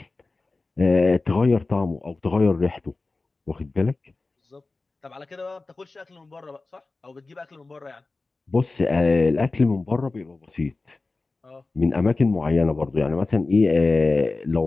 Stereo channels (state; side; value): quieter; right; 3.5 dB